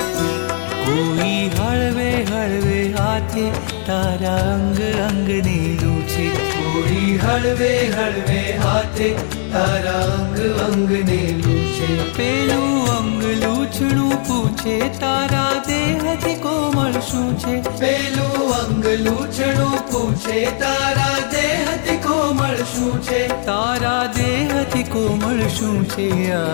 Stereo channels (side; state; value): right; silent; digital silence